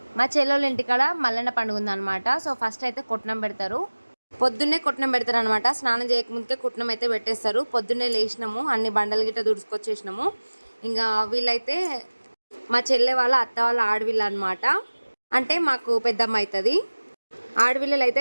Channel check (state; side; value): inverted; both; correlation -1.00